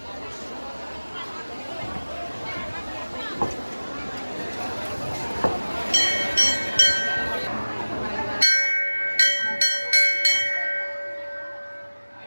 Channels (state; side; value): inverted; both; correlation -1.00